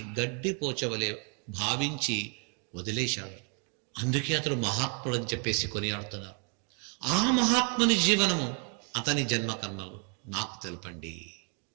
గడ్డి పోచవలే భావించి వదిలేశాడు. అందుకే అతడు మహాత్ముడు అని చెప్పేసి కొనియాడుతున్నారు. ఆ మహాత్ముని జీవనము, అతని జన్మకర్మలు నాకు తెలపండి,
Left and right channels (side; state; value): left; quieter; 38.3 dB